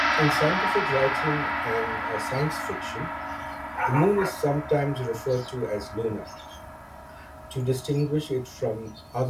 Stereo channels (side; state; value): both; identical; correlation 1.00